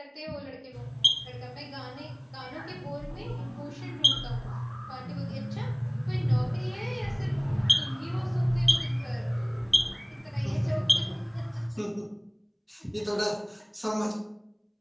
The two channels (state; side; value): identical; both; correlation 1.00